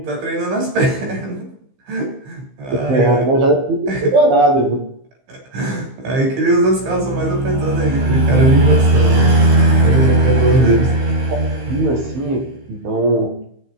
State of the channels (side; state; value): left; late; 15 ms